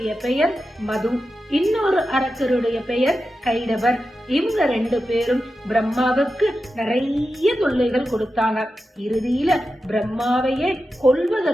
பெயர் மது, இன்னொரு அரக்கருடைய பெயர் கைடவர். இவங்க 2 பேரும் பிரம்மாவுக்கு நிறைய தொல்லைகள் கொடுத்தாங்க. இறுதியில பிரம்மாவையே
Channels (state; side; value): normal; both; correlation 0.91